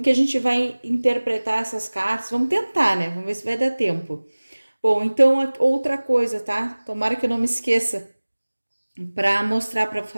que a gente vai interpretar essas cartas. Vamos tentar, né? Vamos ver se vai dar tempo. Bom, então outra coisa, tá? Tomara que eu não me esqueça para mostrar, para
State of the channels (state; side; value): inverted; both; correlation -1.00